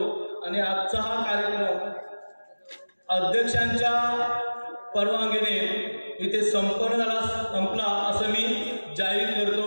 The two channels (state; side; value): inverted; both; correlation -1.00